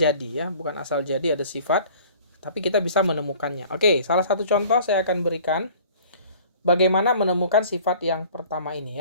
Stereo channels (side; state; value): both; inverted; correlation -0.49